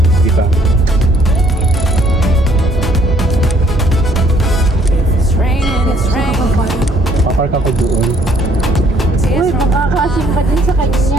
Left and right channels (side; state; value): both; normal; correlation 0.64